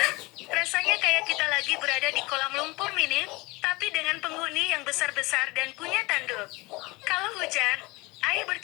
Rasanya kayak kita lagi berada di kolam lumpur mini, tapi dengan penghuni yang besar-besar dan punya tanduk. Kalau hujan, air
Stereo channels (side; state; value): right; quieter; 23.7 dB